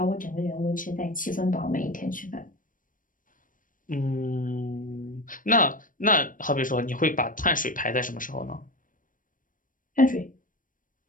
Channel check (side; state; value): right; late; 0.39 ms